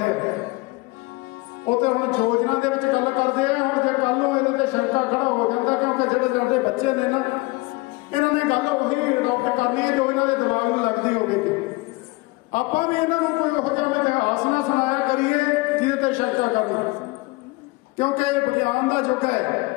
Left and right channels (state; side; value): quieter; right; 24.1 dB